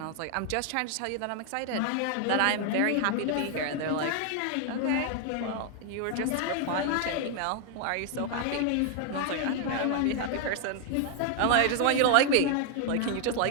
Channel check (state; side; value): different; both; correlation 0.00